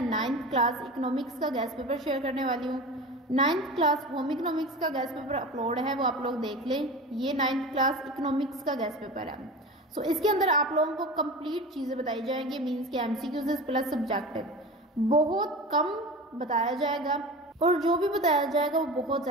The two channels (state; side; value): normal; both; correlation 0.32